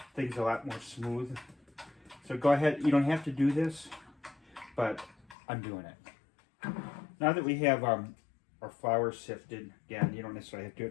things a lot more smooth. So go ahead, you don't have to do this, but I'm doing it. Now that we have our flour sifted, again, you don't necessarily have to do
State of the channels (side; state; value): right; drops out; at 5.4 s